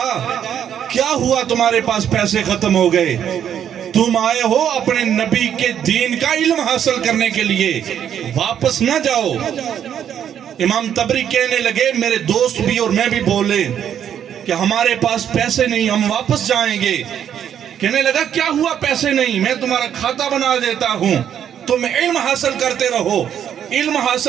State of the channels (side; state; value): left; quieter; 9.3 dB